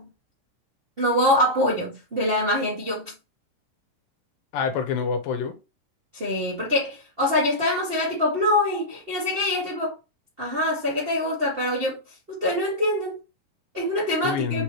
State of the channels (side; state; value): both; normal; correlation -0.12